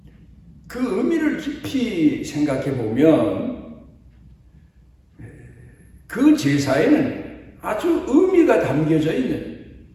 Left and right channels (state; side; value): identical; both; correlation 1.00